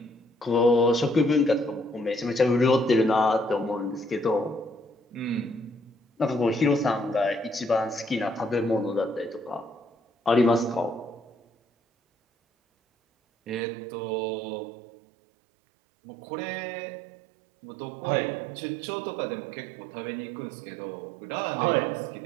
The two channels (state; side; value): drops out; left; at 13.6 s